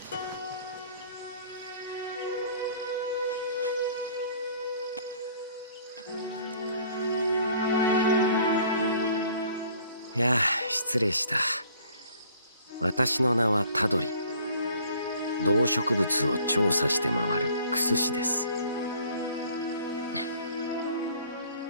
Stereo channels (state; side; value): inverted; both; correlation -0.55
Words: いや、失礼した。私の名はタドリ。動植物を調査して回るクス師です。